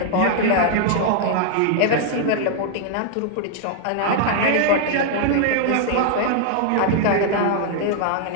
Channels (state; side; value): different; both; correlation 0.00